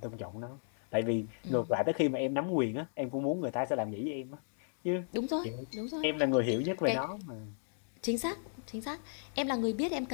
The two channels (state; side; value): silent; right; digital silence